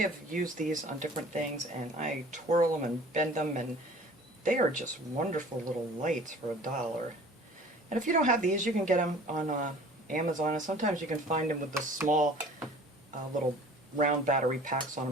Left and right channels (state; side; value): normal; both; correlation 0.47